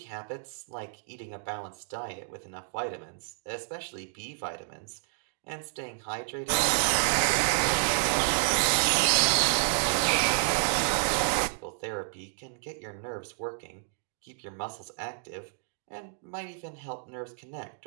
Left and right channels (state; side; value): silent; left; digital silence